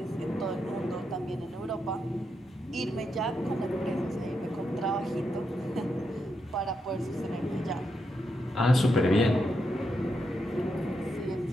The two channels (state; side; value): normal; both; correlation 0.83